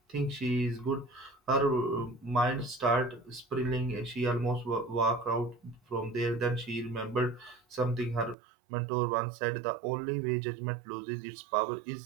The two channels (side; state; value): left; drops out; at 8.3 s